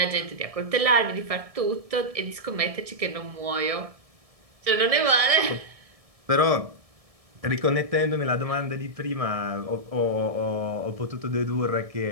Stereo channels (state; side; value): late; left; 1.7 ms